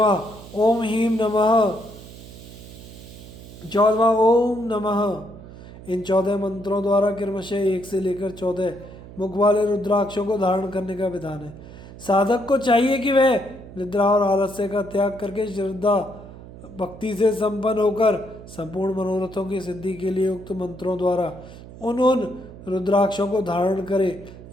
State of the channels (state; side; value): noise; right; hum, 16 dB below the sound